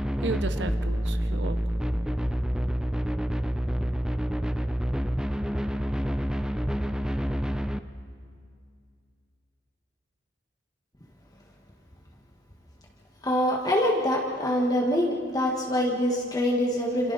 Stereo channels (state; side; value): normal; both; correlation 0.75